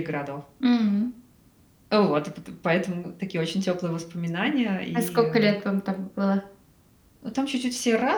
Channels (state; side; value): identical; both; correlation 1.00